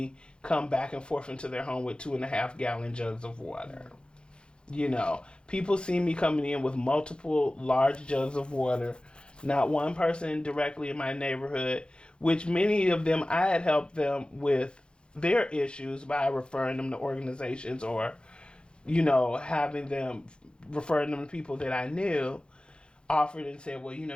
come back and forth into their home with 2.5-gallon jugs of water. People see me coming in with multiple large jugs of water. Not one person directly in my neighborhood, which many of them I had helped them with their issues by referring them to organizations or, having them, referring them to people that I knew, offered and said, well,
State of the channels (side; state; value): right; late; 0.053 ms